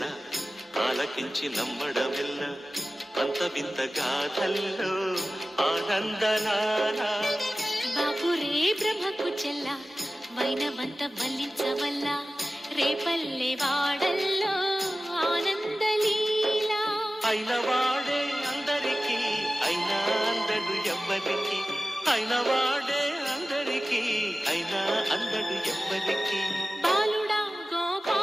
ఆలకించి నమ్మడమెల్ల, అంత వింత గాథల్లో ఆనందలాల. బాపురే బ్రహ్మకు చెల్ల వైనవంత వల్లించవల్ల, రేపల్లె వాడల్లో ఆనందలీల. అయిన వాడే అందరికీ అయినా అందడు ఎవ్వరికి, అయిన వాడే అందరికీ అయినా అందడు ఎవ్వరికి. బాలుడా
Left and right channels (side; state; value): both; normal; correlation 0.96